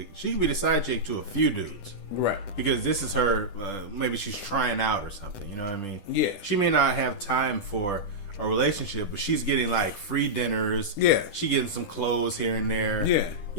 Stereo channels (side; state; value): right; late; 10 ms